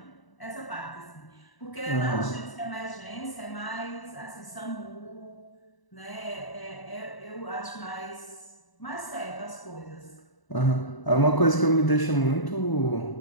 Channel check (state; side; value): late; right; 1.0 ms